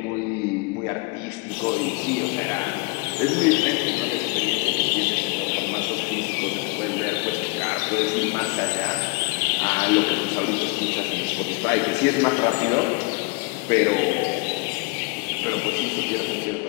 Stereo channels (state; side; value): quieter; right; 27.6 dB